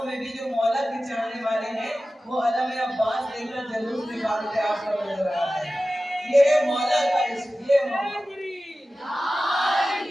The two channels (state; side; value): normal; both; correlation 0.95